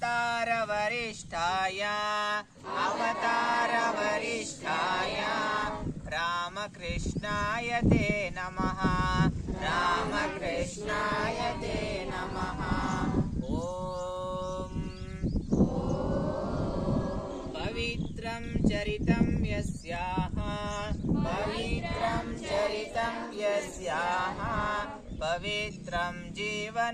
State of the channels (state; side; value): identical; both; correlation 1.00